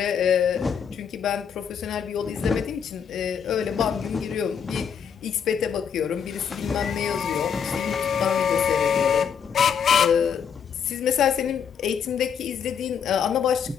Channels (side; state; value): right; quieter; 7.4 dB